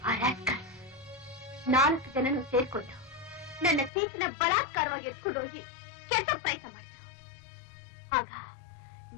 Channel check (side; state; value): right; drops out; at 3.9 s